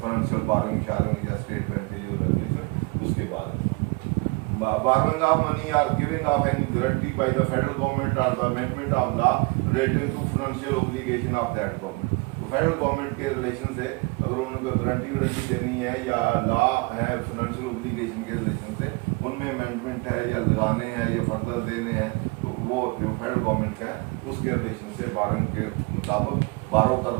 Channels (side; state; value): left; quieter; 27.5 dB